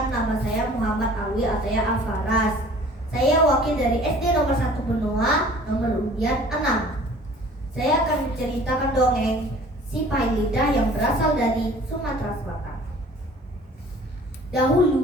nama saya Muhammad Alwi Ataya Alfaras. Saya wakil dari SD nomor 1 Benoa, nomor undian 6. Saya akan menceritakan dongeng si Pailida yang berasal dari Sumatera Selatan.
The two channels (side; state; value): both; normal; correlation 0.49